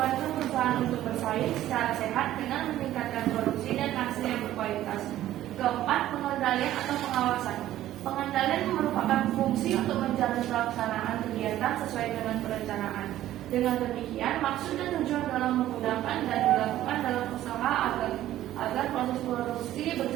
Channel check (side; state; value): left; quieter; 13.5 dB